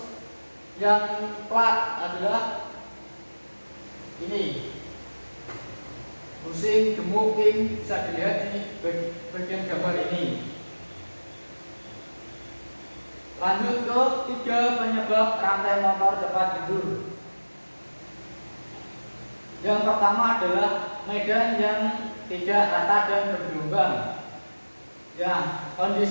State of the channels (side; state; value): both; inverted; correlation -1.00